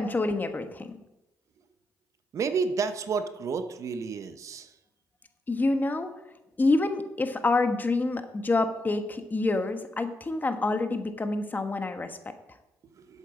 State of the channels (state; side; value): normal; both; correlation 0.83